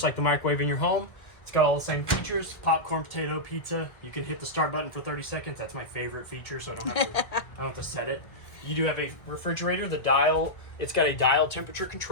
like the microwave in your home. It's got all the same features: popcorn, potato, pizza. You can hit the start button for 30 seconds. That's my favorite feature, so I don't have to set it. You do have a refrigerator. The dial, it's got a dial temperature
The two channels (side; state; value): right; late; 1.6 ms